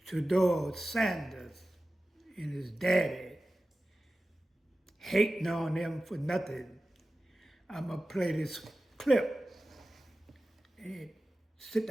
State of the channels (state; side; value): normal; both; correlation 0.95